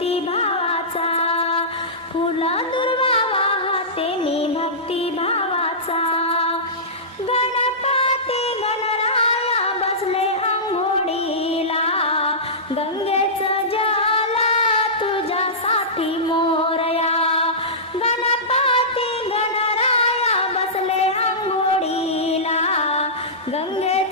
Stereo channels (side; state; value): both; normal; correlation -0.18